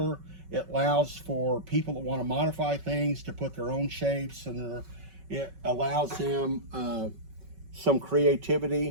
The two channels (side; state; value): left; late; 5.3 ms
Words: It allows for people that want to modify things to put their own shapes, and it allows them some